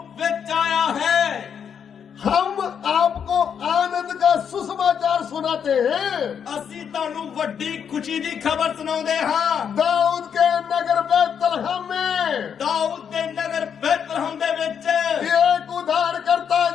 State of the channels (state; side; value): quieter; right; 7.7 dB